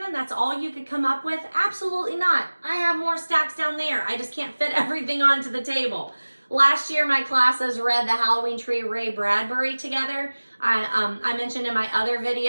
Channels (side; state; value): both; inverted; correlation -1.00